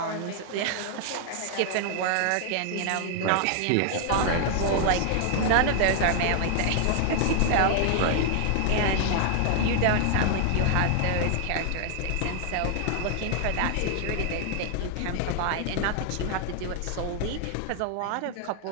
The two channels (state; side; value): different; both; correlation 0.00